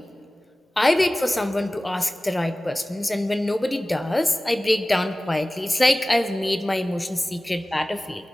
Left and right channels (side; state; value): both; normal; correlation 0.97